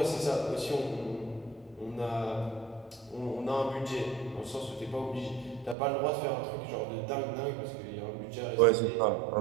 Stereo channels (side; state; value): left; drops out; at 5.8 s